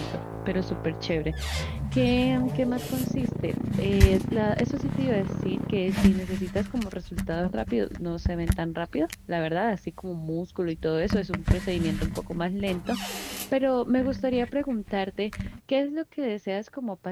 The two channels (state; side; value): identical; both; correlation 1.00